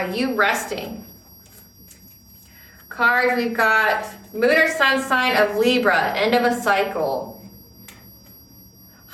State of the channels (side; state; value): both; identical; correlation 1.00